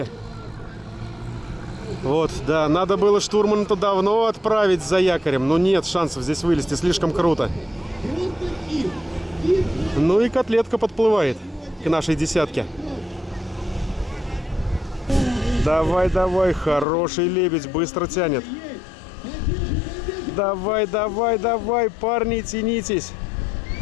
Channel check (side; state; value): right; drops out; at 16.9 s